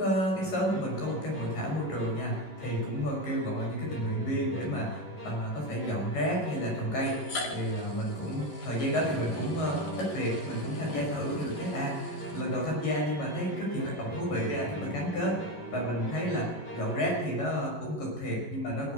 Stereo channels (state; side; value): late; right; 11 ms